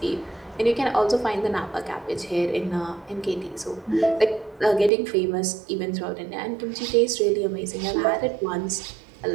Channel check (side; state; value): left; drops out; at 4.9 s